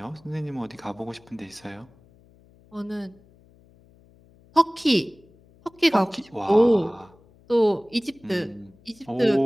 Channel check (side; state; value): left; noise; hum, 28 dB below the sound